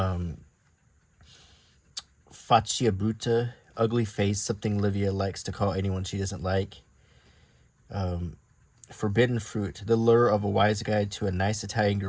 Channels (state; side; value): identical; both; correlation 1.00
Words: faccia brutta, ugly face, something Livia likes to call anyone she doesn't like. Forbidden fruit, the lure of a wise guy to a nice Italian